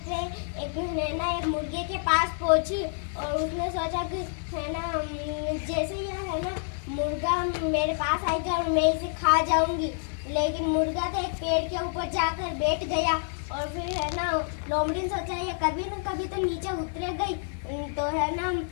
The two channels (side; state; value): right; silent; 59 dB below the other